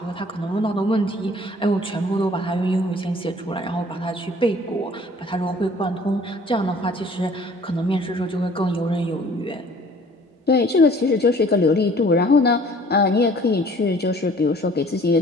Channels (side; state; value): both; normal; correlation 0.53